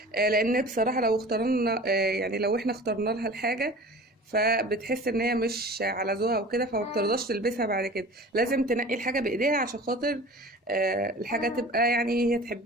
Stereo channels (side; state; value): both; normal; correlation 0.40